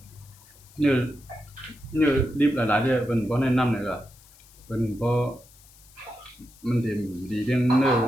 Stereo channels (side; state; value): left; noise; hiss, 25 dB below the sound